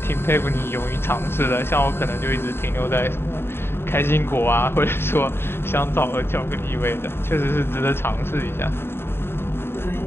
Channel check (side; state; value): right; late; 0.11 ms